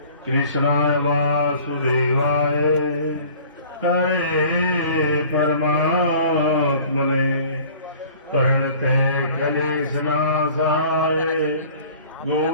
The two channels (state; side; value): inverted; both; correlation -0.48